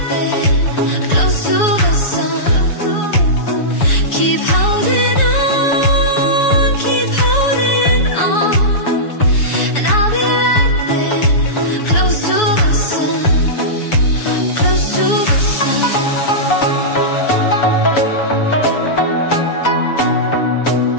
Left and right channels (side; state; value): right; late; 7.0 ms